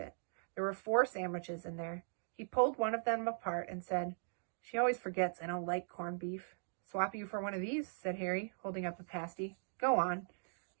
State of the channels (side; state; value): left; silent; digital silence